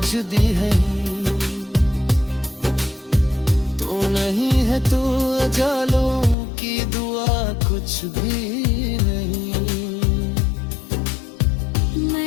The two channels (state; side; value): drops out; right; at 6.4 s